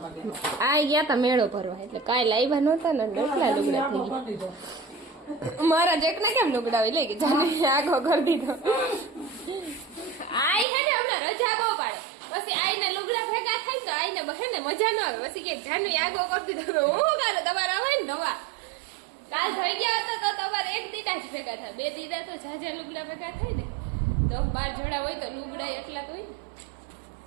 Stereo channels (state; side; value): drops out; left; at 10.7 s